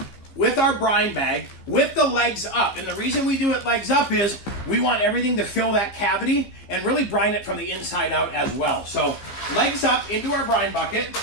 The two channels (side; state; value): right; late; 15 ms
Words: with our brine bag, with the legs up. And the reason we do it legs up is we want everything to fill that cavity and really brine it from the inside out as well. So legs up into our brine bucket.